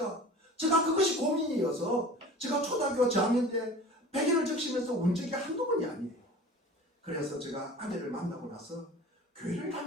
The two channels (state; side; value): normal; both; correlation 0.40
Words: 제가 그것이 고민이어서 제가 초등학교 저학년 때 베개를 적시면서 운 적이 한두 번이 아니에요. 그래서 제가 아내를 만나고 나서 교회를